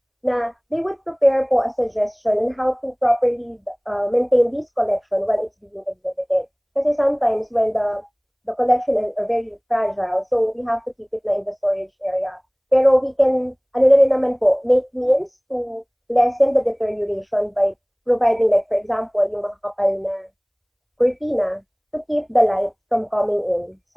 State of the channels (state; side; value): identical; both; correlation 1.00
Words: na they would prepare po a suggestion on how to properly maintain this collection while it's being exhibited. Kasi sometimes when the collection are very fragile, so we have to keep it na in the storage area. Pero we can, make means to lessen the deterioration by providing, like, for example, yung makakapal na cortina to keep the light from coming in